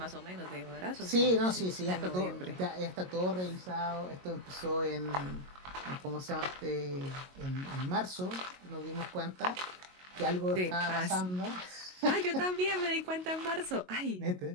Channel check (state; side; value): late; left; 22 ms